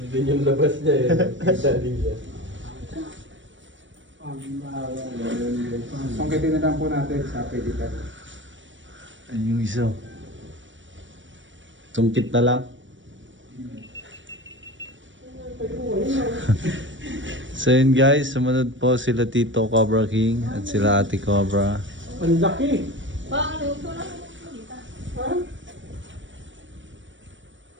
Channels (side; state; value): left; late; 0.55 ms